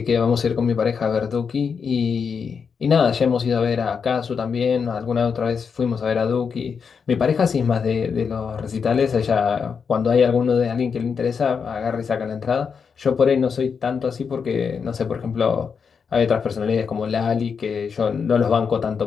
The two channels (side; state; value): right; quieter; 6.1 dB